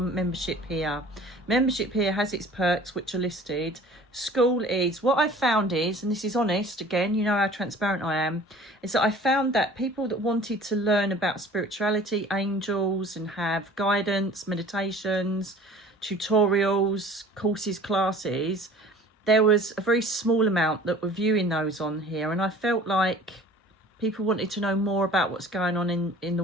membership here. Membership here has its perks, which are listed. SKOOL is, what I found is, and this is honest, again, you know how transparent I am, is that I found that people that wanted to learn about spirituality, angels, and have guidance, meditations, tutorials, courses, classes, there was a very small amount that were viewing those on here. And I felt like people wanted to know more about what's going on in the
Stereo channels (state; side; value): normal; both; correlation 0.46